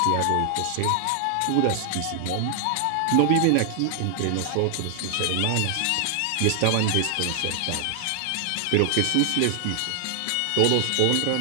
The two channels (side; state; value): both; different; correlation 0.00